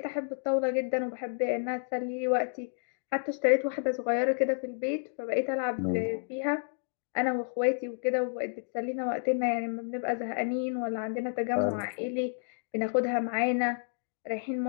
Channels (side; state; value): right; silent; digital silence